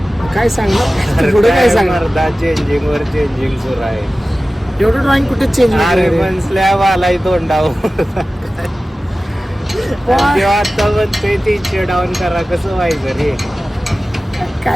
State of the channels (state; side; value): normal; both; correlation 0.96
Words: काय सांगणार पुढे काय सांगणार चेंजिंग वर चेंजिंग सुरू आहे एवढं ड्रॉइंग कुठे चेंज अरे पण स्लॅब आलाय तोंडावर तेव्हा आता म्हणते 300 डाऊन करा कसं व्हायचं रे